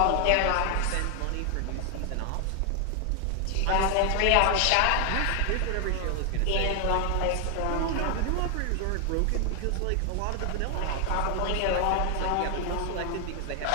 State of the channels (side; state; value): both; different; correlation 0.00